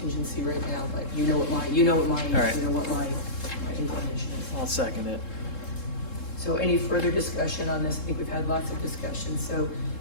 right now, but you know what my right. my inclinations. I'll second it. So any further discussion on this? I think we've had lots of discussion, so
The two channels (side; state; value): right; late; 3.7 ms